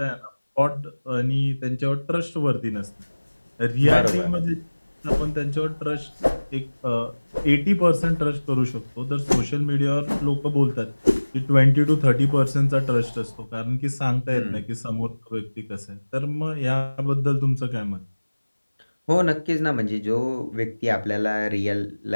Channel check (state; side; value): inverted; both; correlation -1.00